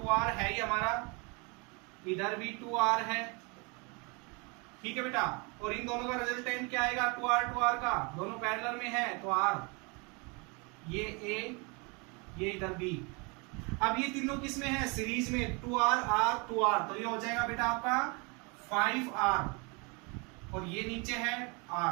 है ही हमारा, इधर भी 2R है, ठीक है बेटा। और इन दोनों का रिजल्टेंट क्या आएगा? 2R का, दोनों पैरेलल में है, तो R, ये A, ये इधर B। अब ये तीनों किस में है? सीरीज में, 2R R 2R, तो ये हो जाएगा बेटा आपका 5R, और ये नीचे है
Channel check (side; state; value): left; quieter; 30.8 dB